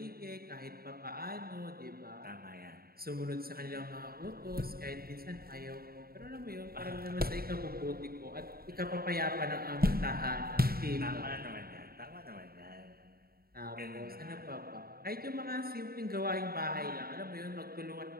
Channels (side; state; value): left; late; 0.44 ms